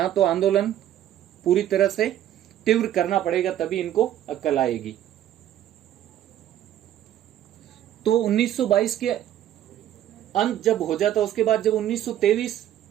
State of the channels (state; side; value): quieter; left; 11.7 dB